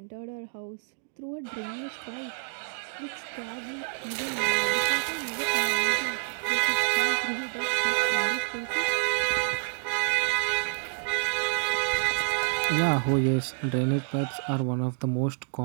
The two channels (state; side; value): silent; left; digital silence